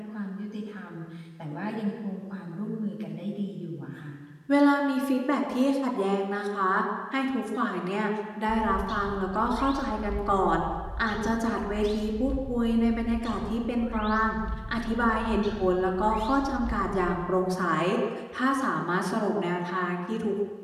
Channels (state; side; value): identical; both; correlation 1.00